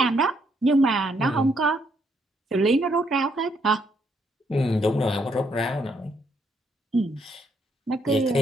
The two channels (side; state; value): both; normal; correlation 0.73